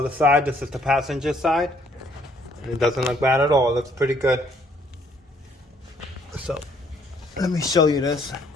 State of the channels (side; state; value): both; normal; correlation 0.65